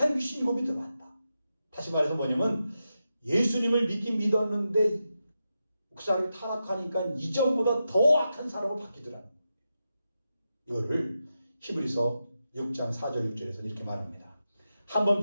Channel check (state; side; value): inverted; both; correlation -0.89